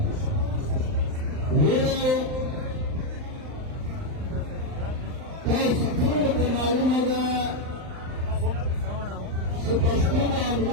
ویلو تاسو ټولو ته معلومه ده چې پښتون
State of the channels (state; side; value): late; left; 39 ms